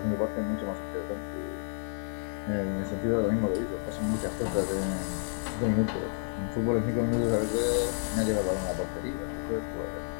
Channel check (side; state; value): right; silent; digital silence